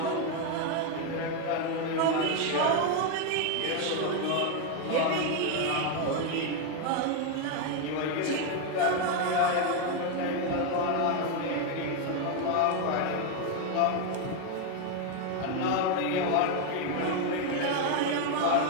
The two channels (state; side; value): different; both; correlation 0.02